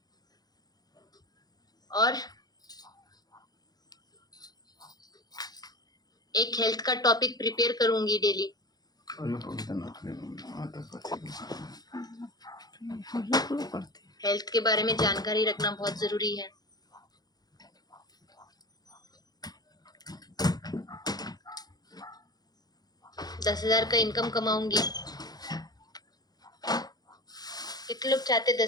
और एक हेल्थ का टॉपिक प्रिपेयर करूंगी डेली। हेल्थ के बारे में जानकारी रखना बहुत जरूरी है। दस 10,000 का इनकम कमाऊंगी। कितने लोग चाहते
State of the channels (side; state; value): right; late; 0.19 ms